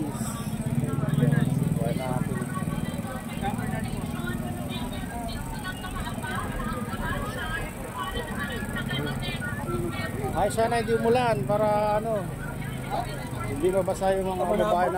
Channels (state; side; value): identical; both; correlation 1.00